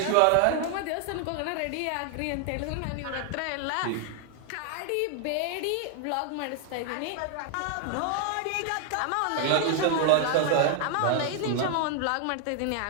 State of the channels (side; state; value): both; different; correlation 0.00